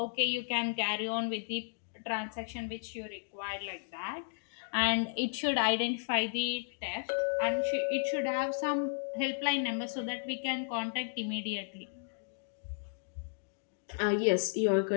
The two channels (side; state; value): right; silent; digital silence